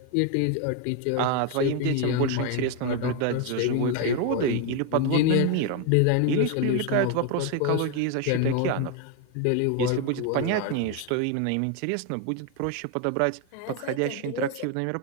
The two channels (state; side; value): different; both; correlation 0.01